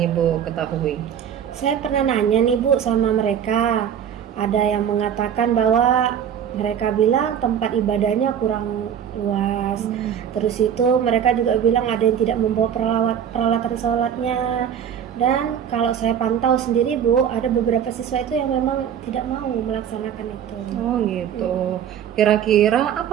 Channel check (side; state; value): left; quieter; 8.8 dB